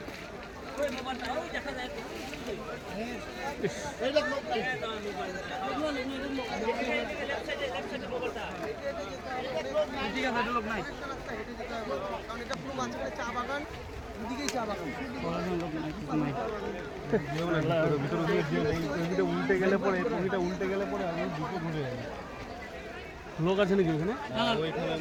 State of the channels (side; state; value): both; identical; correlation 1.00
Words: চা বাগান উল্টে গেলে পরে আমি দুটো ঘুরে লোক আছে নাকি ওখানে?